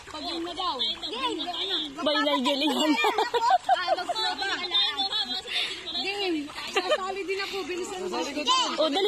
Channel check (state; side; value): identical; both; correlation 1.00